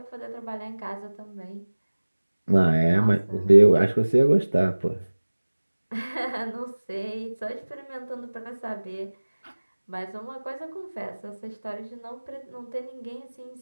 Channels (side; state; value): both; inverted; correlation -1.00